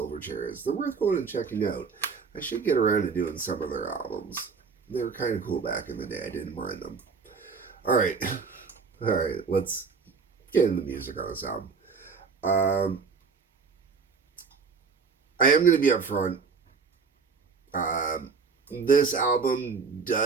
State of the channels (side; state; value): left; quieter; 5.2 dB